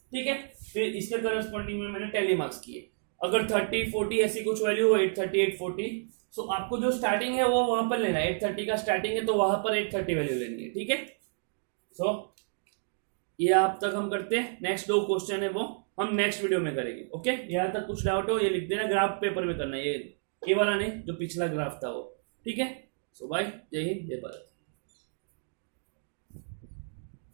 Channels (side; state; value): left; silent; digital silence